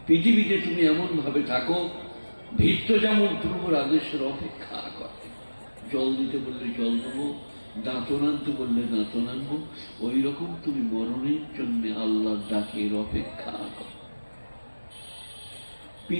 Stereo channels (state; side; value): inverted; both; correlation -1.00